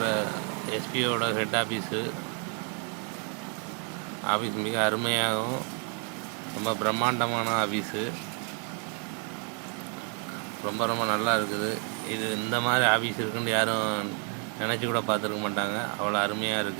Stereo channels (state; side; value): quieter; left; 39.2 dB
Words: எஸ்பிஓட ஹெட் ஆஃபீஸ் மிக அருமையாகவும் ரொம்ப பிரம்மாண்டமான ஆஃபீஸு. ரொம்ப நல்லா இருக்குது. இது இந்த மாதிரி ஆஃபீஸ் இருக்குன்னு யாரும் நினச்சி கூட பார்த்துருக்க மாட்டாங்க. அவ்வளோ அருமையாக